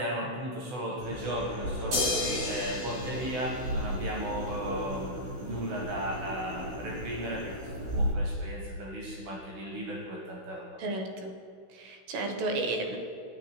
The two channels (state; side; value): late; left; 16 ms